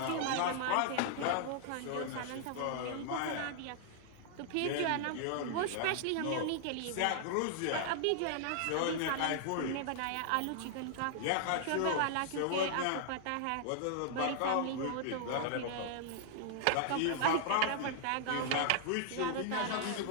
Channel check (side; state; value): both; different; correlation -0.01